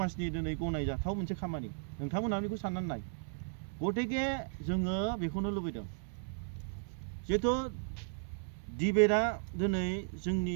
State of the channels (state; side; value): silent; left; 54 dB below the other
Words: दिनै गनायजाथाव मोनसे खामानि नोंथांमोना बेखौ साननानै नाय गथिखे जोङो बेखौनो लुबैदों जिहेथु डिबेटआ दिनै